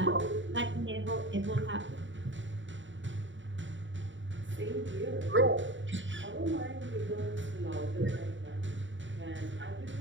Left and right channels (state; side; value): late; left; 0.55 ms